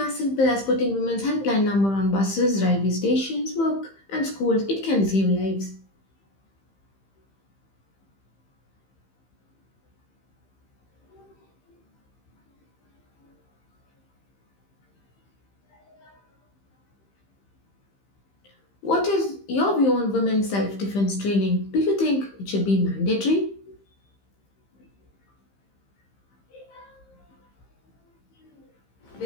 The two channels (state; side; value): late; right; 15 ms